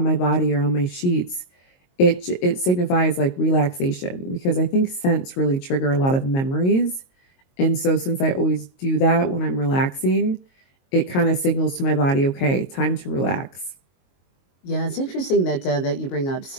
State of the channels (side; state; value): right; late; 22 ms